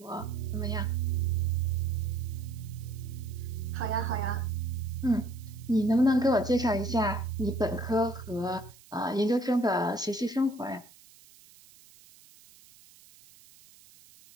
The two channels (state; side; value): noise; right; hiss, 24 dB below the sound